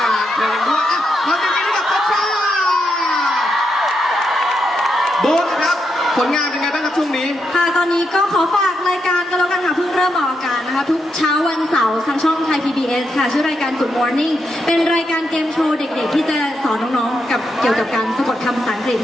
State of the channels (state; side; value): normal; both; correlation 0.82